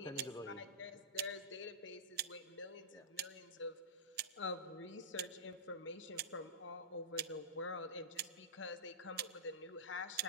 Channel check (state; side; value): normal; both; correlation -0.15